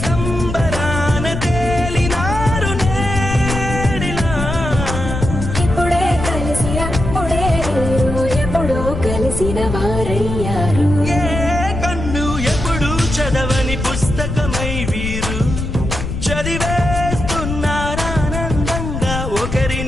సంబరాన తేలినారు నేడిలా ఇప్పుడే కలిసి అప్పుడే మీరు ఎప్పుడో కలిసిన వారయ్యారు ఏ కన్ను ఎప్పుడు చదవని పుస్తకమై వీరు చదివేస్తున్నారానందంగా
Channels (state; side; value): noise; left; rumble, 5 dB below the sound